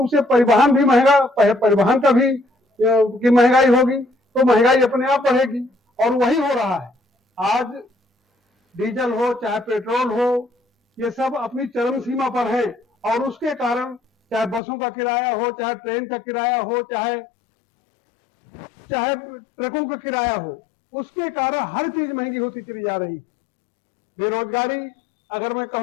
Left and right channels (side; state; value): right; drops out; at 14.6 s